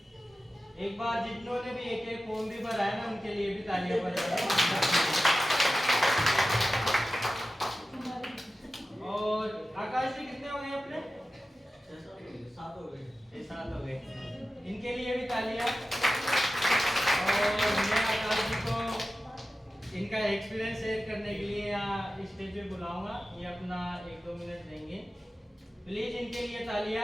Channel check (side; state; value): both; normal; correlation 0.94